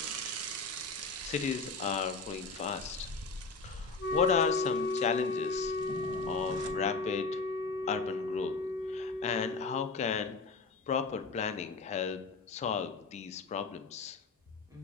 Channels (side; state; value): right; quieter; 4.1 dB